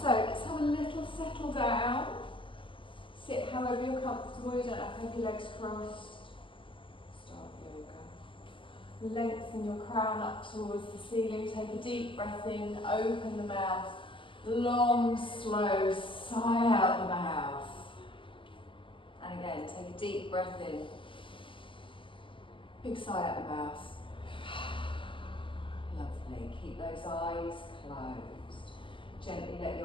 let's have a little settle down. Sit however you're comfortable. You don't have to have your legs crossed. Start yoga. Lengthen your crown up towards the ceiling. Take a deep breath in. Open the mouth. Long, slow sigh out the mouth. And again, take a deep breath in. Big sigh out the mouth. Lovely. Keep those eyes closed. Gently let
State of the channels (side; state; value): right; late; 0.25 ms